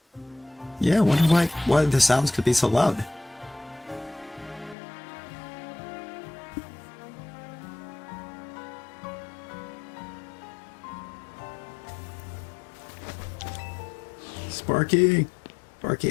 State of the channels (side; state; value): right; drops out; at 4.8 s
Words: Yeah, I wonder why the sounds could be so loud. Sparky! Sparky,